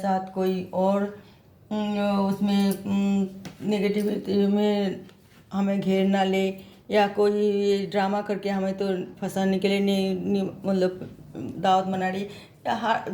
कोई और उसमें नेगेटिविटी में हमें घेर ना ले, या कोई ड्रामा करके हमें तो फंसाने के लिए नहीं मतलब दावत मना रही, या हर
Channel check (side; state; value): both; identical; correlation 1.00